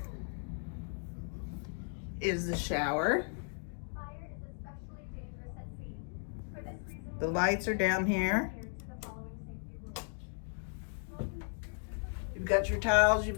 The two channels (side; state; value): right; silent; 54 dB below the other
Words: is the shower. The lights are down here. You've got your towels, you've